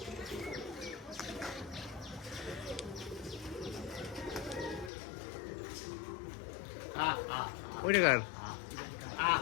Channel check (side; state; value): right; drops out; at 4.9 s